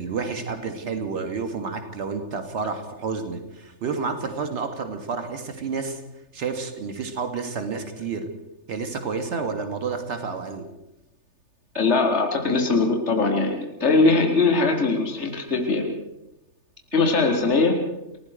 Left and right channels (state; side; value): late; left; 3.3 ms